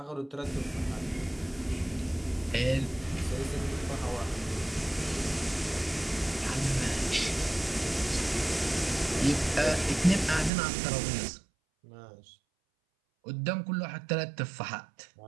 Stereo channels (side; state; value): left; drops out; at 10.5 s